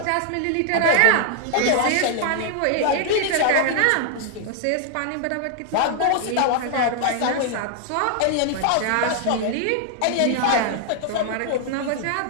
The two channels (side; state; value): both; different; correlation 0.00